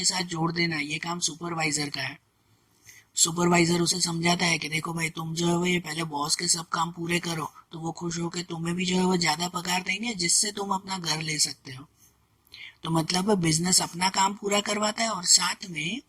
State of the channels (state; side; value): identical; both; correlation 1.00